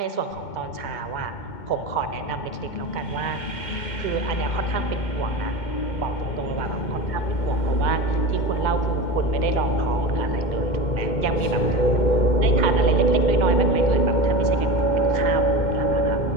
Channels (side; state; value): right; late; 2.2 ms